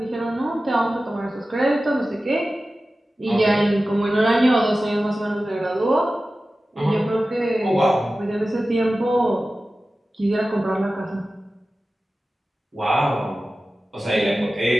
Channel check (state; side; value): normal; both; correlation 0.95